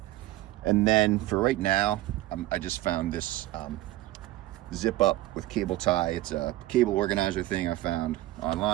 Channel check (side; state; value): left; quieter; 16.3 dB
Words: And then for right now, I just found this zip up with cable tie. It's a cable organizer thing I found